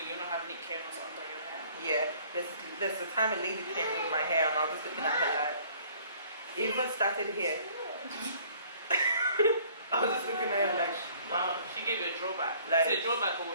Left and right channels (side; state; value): both; inverted; correlation -0.56